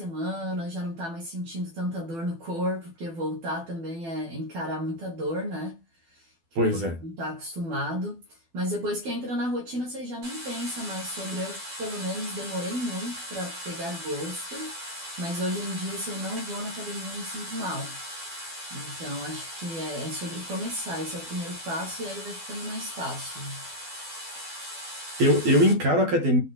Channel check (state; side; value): late; left; 12 ms